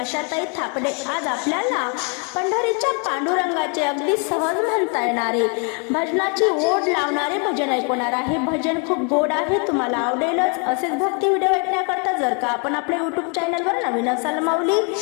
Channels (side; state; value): right; quieter; 37.4 dB